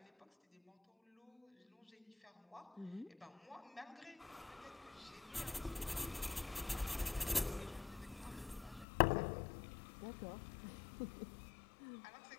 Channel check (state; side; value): drops out; right; at 8.8 s